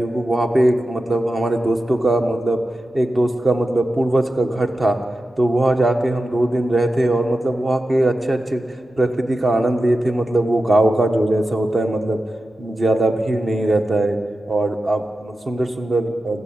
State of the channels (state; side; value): normal; both; correlation 0.92